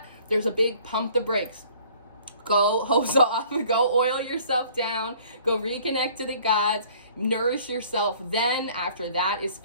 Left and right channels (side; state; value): both; inverted; correlation -0.55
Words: There's a big pump the brakes. Go hose off, go oil yourself down, go reconnect to the gods, nourish yourself. Then after that is